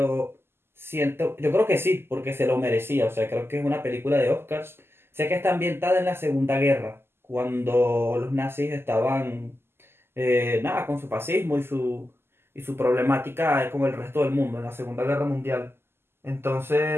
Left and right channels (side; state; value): left; late; 0.12 ms